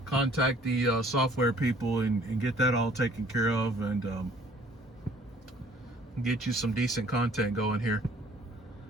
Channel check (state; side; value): normal; both; correlation 0.56